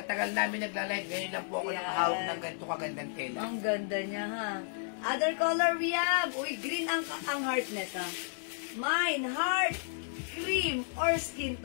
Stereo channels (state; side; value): silent; right; 56 dB below the other